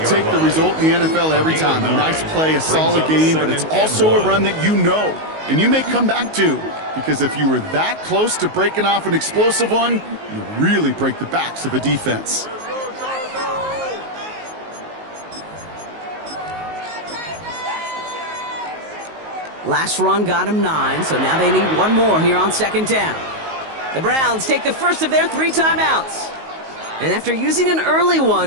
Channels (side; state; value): left; late; 19 ms